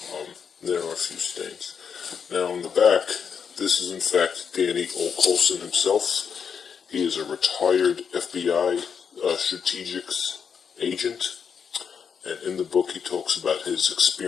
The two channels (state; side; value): quieter; right; 6.8 dB